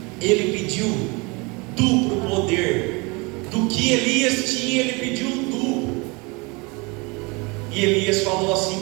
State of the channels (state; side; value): quieter; left; 27.9 dB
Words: Ele pediu duplo poder. Do que Elias tinha, ele pediu um duplo. E Elias falou assim